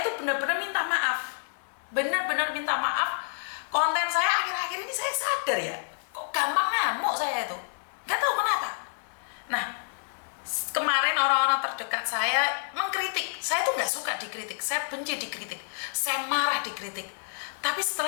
tuh benar-benar minta maaf. Benar-benar minta maaf. Konten saya akhir-akhir ini saya sadar ya, kok gampang ngamuk saya itu. Gak tahu kenapa. Nah, kemarin orang-orang terdekat saya mengkritik. Saya tuh gak suka dikritik. Saya benci dikritik. Saya marah dikritik. Tapi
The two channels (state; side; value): silent; right; digital silence